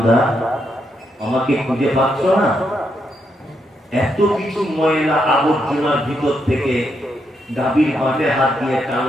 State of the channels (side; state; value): both; normal; correlation 0.80